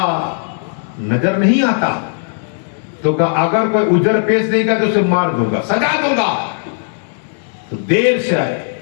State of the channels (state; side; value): silent; right; digital silence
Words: نظر نہیں آتا. تو کہا اگر کوئی اجر پیش نہیں گا تو اسے مار دوں گا, سجا دوں گا. تو دیر سے آئے